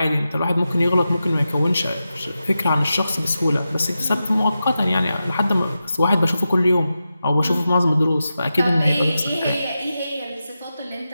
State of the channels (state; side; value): inverted; both; correlation -0.91